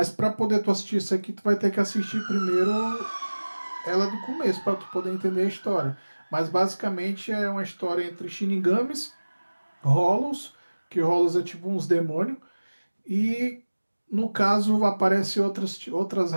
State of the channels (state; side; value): inverted; both; correlation -1.00